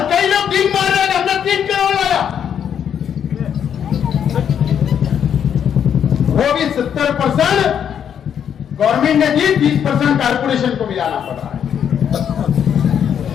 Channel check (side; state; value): right; quieter; 8.5 dB